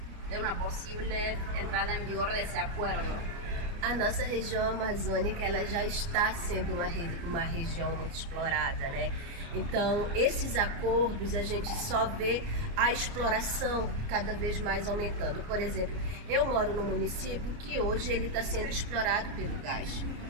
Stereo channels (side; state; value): left; late; 29 ms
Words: de una posible entrada en vigor de ese acuerdo? A nossa região amazônica ela já está sendo uma região muito explorada, né? Então, esses acordos a gente só vê a exploração cada vez mais aumentando. Por exemplo, eu moro num município que hoje ele está sendo explorado pelo gás.